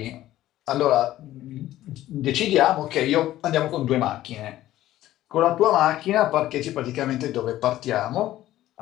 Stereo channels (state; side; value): quieter; right; 14.3 dB